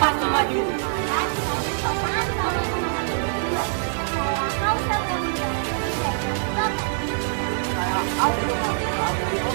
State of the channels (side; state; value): left; silent; digital silence